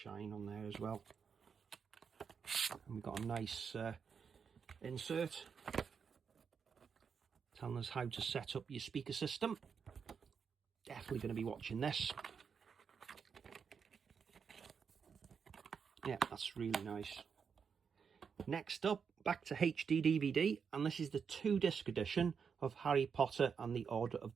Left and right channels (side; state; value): left; quieter; 6.4 dB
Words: on there as well. And we've got a nice insert telling us how to set up your speaker system. Definitely going to be watching this. Yeah, that's really nice. Next up, back to HD DVD, and this is the 2-disc edition of Harry Potter and the Order of